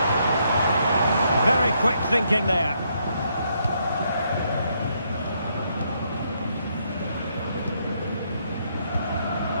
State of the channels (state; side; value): inverted; both; correlation -0.74